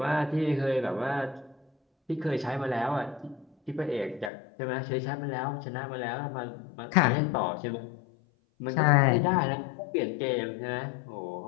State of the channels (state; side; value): drops out; right; at 4.3 s